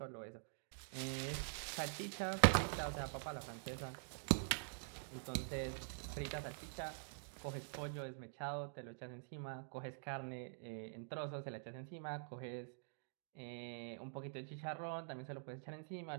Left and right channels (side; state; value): left; silent; digital silence